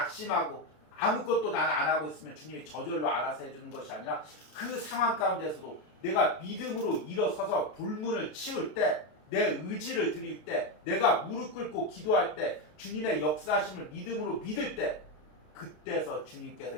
아무것도 나는 안 하고 있으면 주님이 저절로 알아서 해주는 것이 아니라 그 상황 가운데서도 내가 믿음으로 일어서서 돌문을 치울 때, 내 의지를 드릴 때, 내가 무릎 꿇고 기도할 때, 주님의 역사하심을 믿음으로 믿을 때, 그때서 주님께서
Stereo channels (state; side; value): late; right; 33 ms